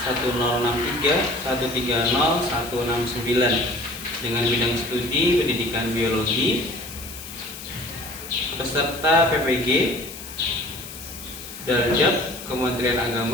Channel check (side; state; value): left; noise; hiss, 13 dB below the sound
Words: dengan bidang studi pendidikan biologi, peserta PPG Darjat Kementerian